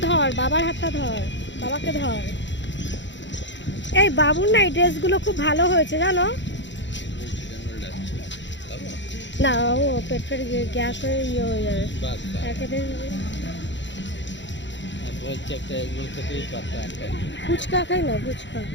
ধর, বাবার হাতটা ধর, বাবাকে ধর। এই বাবুর না এই ড্রেসগুলো খুব ভালো হয়েছে জানো। না ও পেটের গ্যাস হয়ে ইয়ে হয়ে যাবে একেবারে। ফুচকা খাই না, ফুচকা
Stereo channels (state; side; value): late; right; 0.53 ms